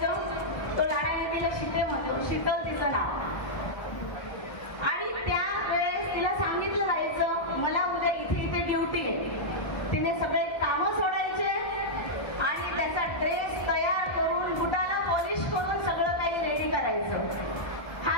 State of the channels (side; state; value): right; late; 1.2 ms